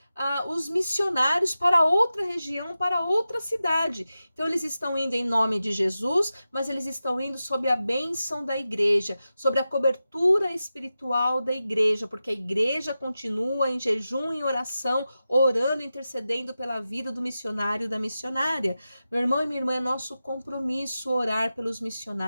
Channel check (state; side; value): inverted; both; correlation -0.93